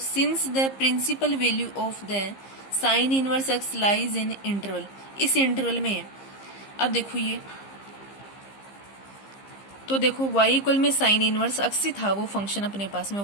the principal value of the sine inverse x lies in interval, इस इंटरवल में है। अब देखो ये तो देखो y इक्वल में साइन इनवर्स एक्स ही था वो फंक्शन अपने पास में, y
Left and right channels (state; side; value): late; right; 15 ms